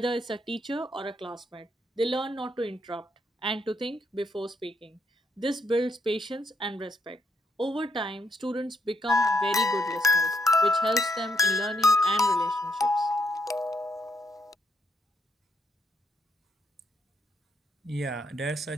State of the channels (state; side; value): normal; both; correlation 0.76